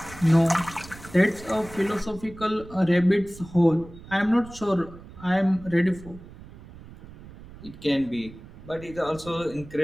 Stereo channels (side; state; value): right; noise; rumble, 18 dB below the sound